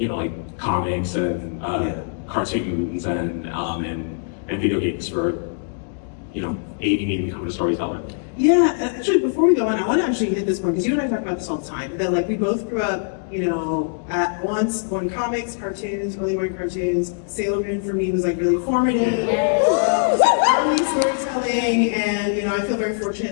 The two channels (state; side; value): silent; right; digital silence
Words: comics and cartoons and video games for, aiding me in becoming a storyteller. Yeah, actually, before we go on, I want to actually hit this point, because you and I talk about this all the time, that like we both grew up, at once on comics, cartoons, early morning cartoons. Sailor Moon for me was like really formative. Early storytelling, and I feel very